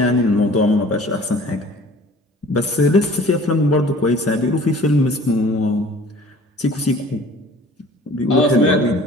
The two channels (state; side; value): normal; both; correlation 0.48